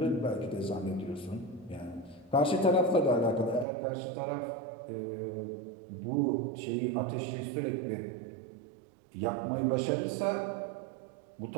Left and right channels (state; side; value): drops out; left; at 3.7 s